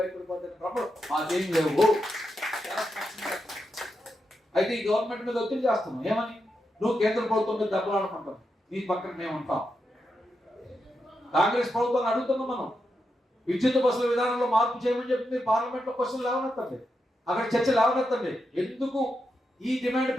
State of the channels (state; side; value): normal; both; correlation 0.86